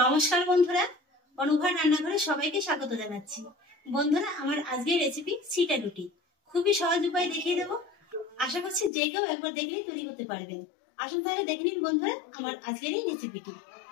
বন্ধুরা, অনুভা রান্নাঘরে সবাইকে স্বাগত জানাচ্ছি। বন্ধুরা, আমার আজকের রেসিপি ছিটা রুটি। খুবই সহজ উপায়ে দেখিয়ে দেবো। আশা করছি যে কেউ একবার দেখলেই তৈরি করতে পারবেন। আসুন তাহলে দেখে নিন বন্ধুরা আমার আজকের এই রেসিপিটি।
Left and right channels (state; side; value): drops out; right; at 8.9 s